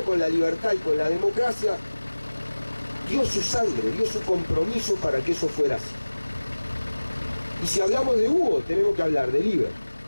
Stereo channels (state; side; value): inverted; both; correlation -1.00